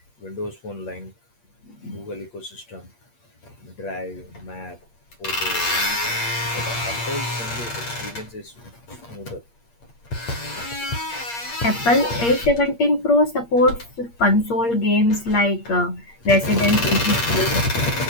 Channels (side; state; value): right; late; 8.5 ms